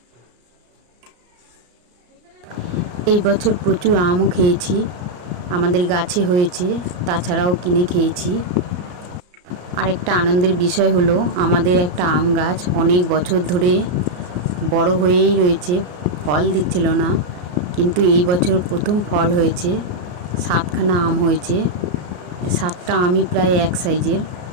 এই বছর প্রচুর আমও খেয়েছি, আমাদের গাছে হয়েছে, তাছাড়াও কিনে খেয়েছি। আরেকটা আনন্দের বিষয় হলো, আমাদের একটা আম গাছ অনেক বছর ধরে বড় হয়েই রয়েছে, ফল দিচ্ছিল না, কিন্তু এই বছর প্রথম ফল হয়েছে। 7খানা আম হয়েছে, 7টা আমই প্রায় এক সাইজের,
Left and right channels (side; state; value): left; late; 34 ms